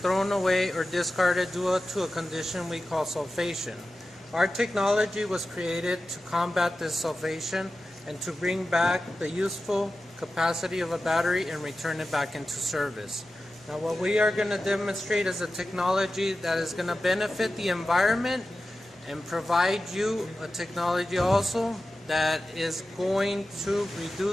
away or discarded due to a condition we call sulfation. Our technology was created to combat this sulfation and to bring back the useful capacity of a battery and return it back into service. Now what we are going to demonstrate is a technology that is going to benefit the environment and provide you a technology also that is going to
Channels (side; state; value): both; normal; correlation 0.93